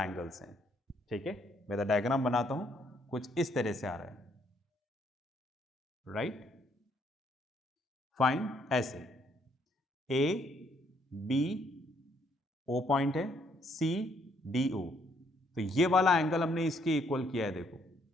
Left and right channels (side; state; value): both; normal; correlation 0.69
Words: हैं। ठीक है, मैं तो डायग्राम बनाता हूं, कुछ इस तरह से आ रहा है, राइट। फाइन, ऐसे A B O पॉइंट है, C D O, तो ये वाला एंगल हमने इसके इक्वल किया है, देखो,